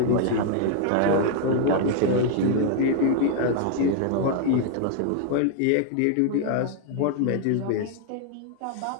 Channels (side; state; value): both; different; correlation 0.00